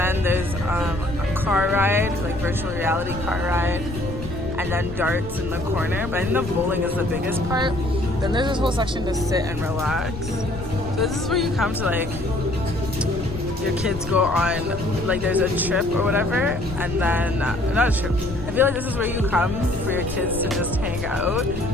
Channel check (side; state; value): left; noise; rumble, 10 dB below the sound